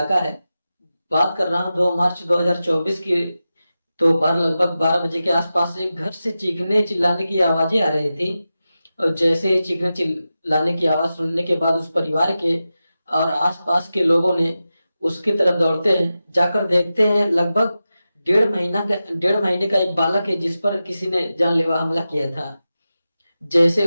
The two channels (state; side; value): inverted; both; correlation -0.93